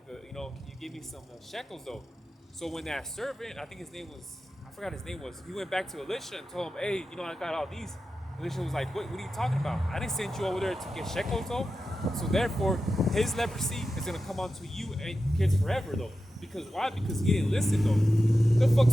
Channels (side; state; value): both; normal; correlation 0.92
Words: can you give me some shekels, though?" So when that servant, I think his name was, I forgot his name was, he went back to Elisha and told him, "Hey, I got all these." Elisha was like, what are you talking about? I didn't send you over there to get shekels, though. So therefore, his leprosy is gonna come onto you and kids forever, though. Because why? Because he didn't listen, though. The fuck,